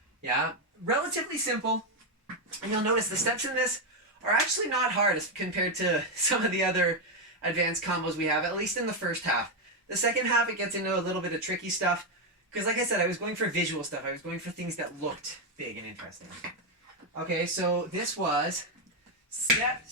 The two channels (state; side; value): normal; both; correlation 0.04